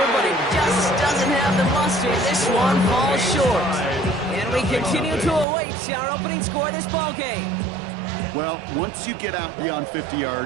but it just doesn't have the muster. This one falls short. And we continue to await our opening score of this ball game. Well, once you get out beyond 50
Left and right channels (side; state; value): left; drops out; at 5.5 s